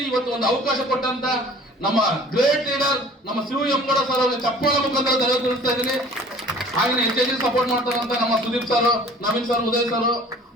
ಇವತ್ತು ಒಂದು ಅವಕಾಶ ಕೊಟ್ಟಂತ ನಮ್ಮ ಗ್ರೇಟ್ ಲೀಡರ್ ನಮ್ಮ ಶಿವ ಎಮ್ಮಡ ಸರ್ ಅವರಿಗೆ ಚಪ್ಪಾಳೆ ಮುಖಾಂತರ ಧನ್ಯವಾದ ತಿಳಿಸ್ತಾ ಇದ್ದೀನಿ. ಹಾಗೆ ಹೆಚ್ಚೆಚ್ಚು ಸಪೋರ್ಟ್ ಮಾಡ್ತಾರಂತ ನಮ್ಮ Sudeep sir, Naveen sir, Uday sir,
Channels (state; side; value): normal; both; correlation 0.48